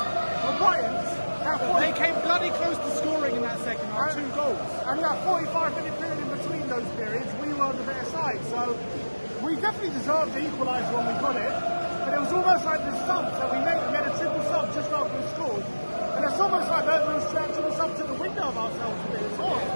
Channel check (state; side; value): inverted; both; correlation -1.00